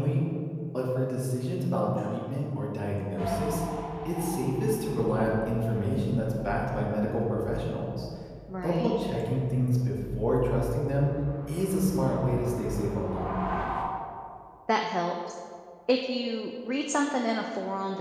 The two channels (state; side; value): identical; both; correlation 1.00